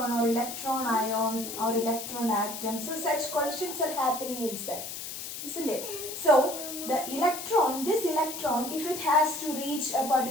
or electron-ion or electron-atom. So such collisions are happening inside, isn't it? So this electron, if it has to reach a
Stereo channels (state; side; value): noise; left; hiss, 8 dB below the sound